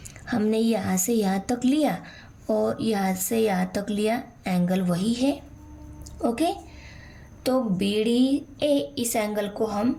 हमने यहाँ से यहाँ तक लिया और यहाँ से यहाँ तक लिया, एंगल वही है। ओके, तो BDA इस एंगल को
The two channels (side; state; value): both; identical; correlation 1.00